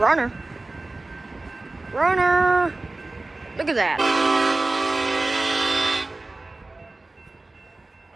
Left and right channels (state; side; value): quieter; left; 3.1 dB